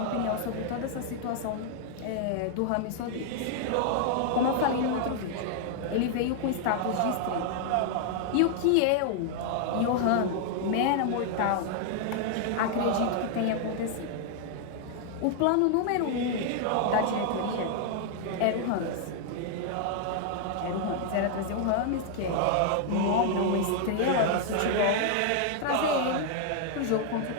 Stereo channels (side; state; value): both; different; correlation 0.00